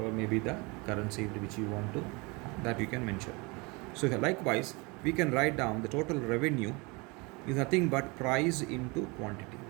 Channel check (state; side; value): quieter; left; 27.3 dB